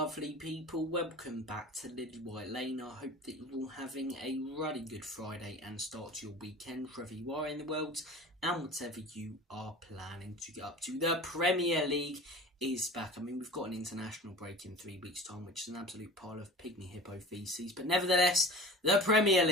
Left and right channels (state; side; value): normal; both; correlation 0.39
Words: people. Welcome back to Lily White Lane. I hope that you're all having a really good Friday and start to your weekend, wherever you are in the world, and whatever you are planning to get up to. The Premier League is back. I mean, we've got an international break in 3 weeks' time, which is an absolute pile of pygmy hippo feces. But nevertheless, the Premier